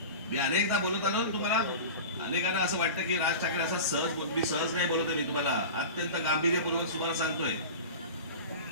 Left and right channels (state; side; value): inverted; both; correlation -0.32